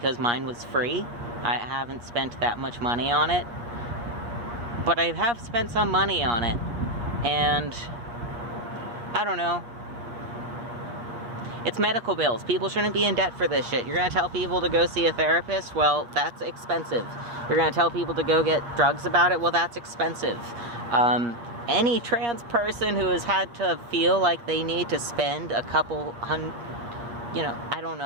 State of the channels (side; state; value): left; late; 8.4 ms